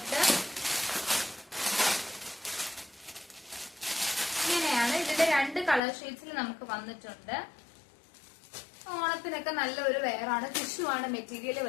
ഇങ്ങനെയാണ്. ഇതിന്റെ 2 കളർ ഷെയ്ഡ്സിൽ നമുക്ക് വന്നിട്ടുണ്ട്. ഓണത്തിനൊക്കെ നല്ലൊരു വെയറാണ്. ടിഷ്യൂ ആണ് മെറ്റീരിയൽ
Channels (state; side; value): drops out; right; at 5.8 s